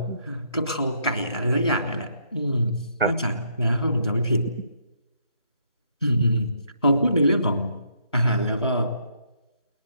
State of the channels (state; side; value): inverted; both; correlation -0.72